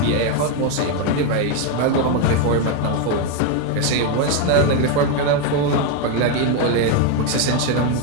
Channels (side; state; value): both; different; correlation 0.02